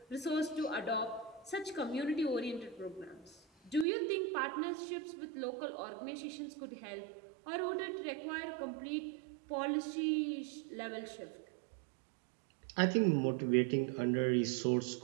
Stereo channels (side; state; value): left; drops out; at 3.9 s